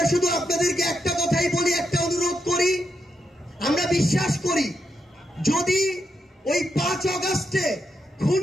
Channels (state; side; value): normal; both; correlation 0.82